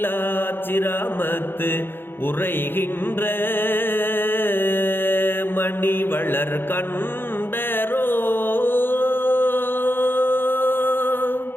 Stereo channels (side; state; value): right; late; 0.10 ms